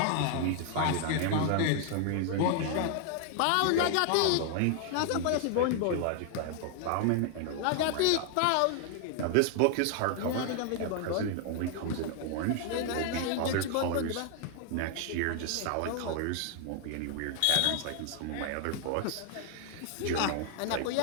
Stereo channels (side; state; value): both; different; correlation 0.00